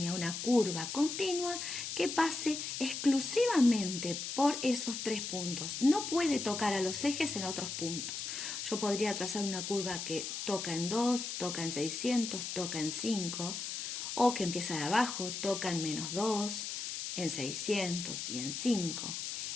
una curva continua que pase exclusivamente por esos 3 puntos. No puede tocar a los ejes en otros puntos. Yo podría trazar una curva que toca en 2, toca en 600, toca en 5, o que empieza de abajo, toca en menos 2, en 600 y en 5.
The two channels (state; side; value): noise; left; hiss, 5 dB below the sound